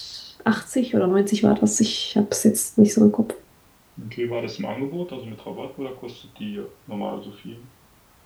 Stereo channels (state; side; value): identical; both; correlation 1.00